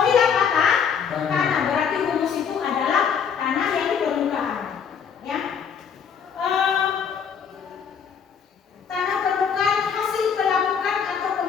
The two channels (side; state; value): right; quieter; 7.1 dB